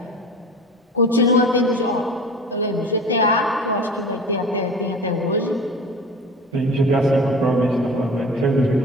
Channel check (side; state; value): both; normal; correlation 0.37